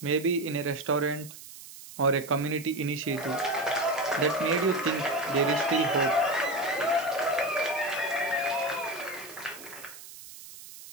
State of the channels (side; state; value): right; noise; hiss, 16 dB below the sound